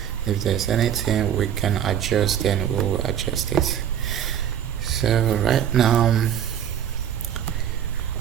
If there's anything we can adjust, then we will adjust it. So right now,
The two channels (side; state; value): left; quieter; 9.7 dB